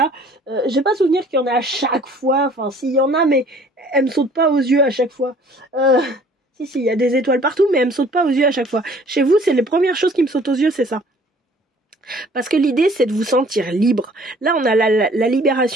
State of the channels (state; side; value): normal; both; correlation 0.54